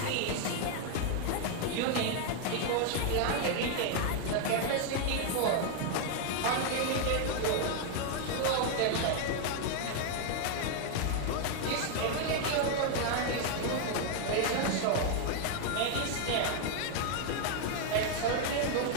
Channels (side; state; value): both; different; correlation 0.00